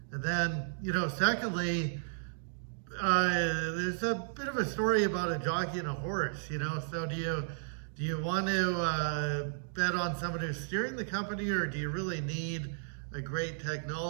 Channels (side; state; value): left; silent; digital silence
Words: And then, secondly, there's a bit of a story about a jockey and a horse, so do you want to bet on someone who's steering the company, or do you really need a great